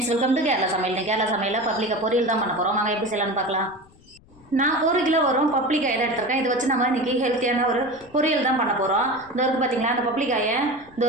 welcome to Kerala சமையல். கேரளா சமையலில் பப்ளிக்கா பொரியல் தான் பண்ண போகிறோம். வாங்க எப்படி செய்யலாம்னு பார்க்கலாம். நான் 1 கிலோ வரும் பப்ளிக்காய் தான் எடுத்துருக்கேன். இதை வச்சு நம்ம இன்றைக்கி ஹெல்த்தியான ஒரு பொரியல் தான் பண்ண போகிறோம். இந்த இருக்குது பார்த்தீங்களா, அந்த பப்ளிக்காயை இந்த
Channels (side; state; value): left; noise; rumble, 27 dB below the sound